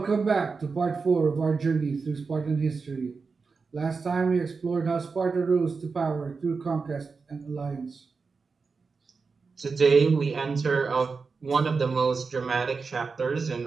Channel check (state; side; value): quieter; left; 4.7 dB